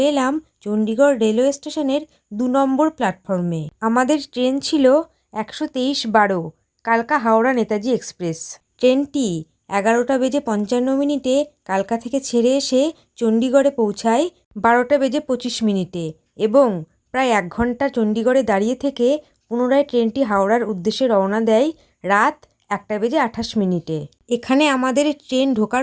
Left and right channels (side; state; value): both; identical; correlation 1.00